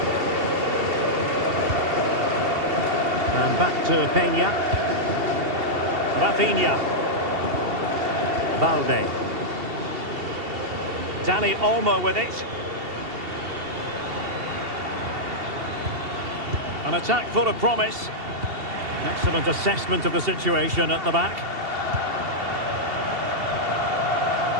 And back to Peña. Rafinha. Balde. Dani Olmo with it. An attack full of promise. Excellent assessment of the situation at the back.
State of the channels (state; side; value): late; left; 2.7 ms